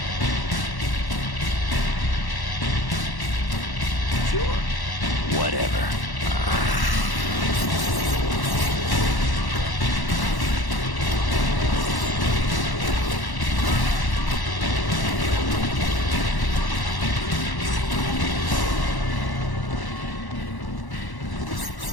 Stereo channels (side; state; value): right; late; 1.1 ms